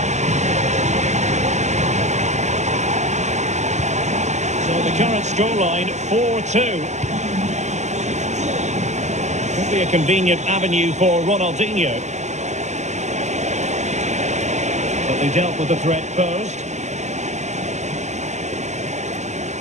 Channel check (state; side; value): late; left; 0.33 ms